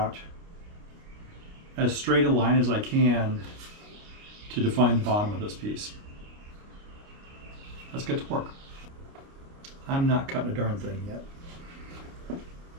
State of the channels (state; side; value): late; left; 29 ms